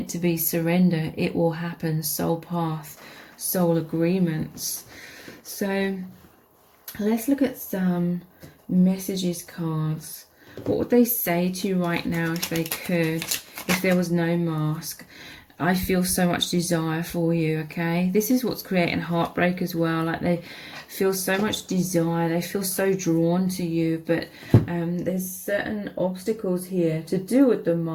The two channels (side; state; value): both; identical; correlation 1.00